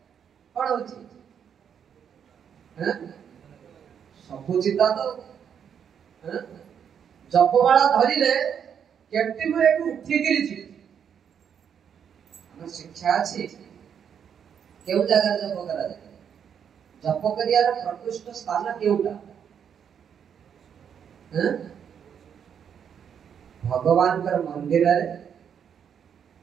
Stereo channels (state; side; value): quieter; left; 8.0 dB